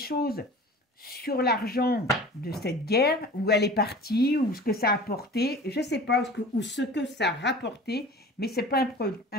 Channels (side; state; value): both; normal; correlation 0.41